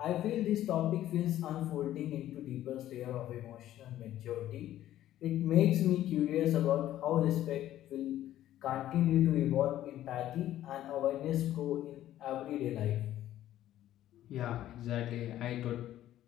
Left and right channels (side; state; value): right; quieter; 13.0 dB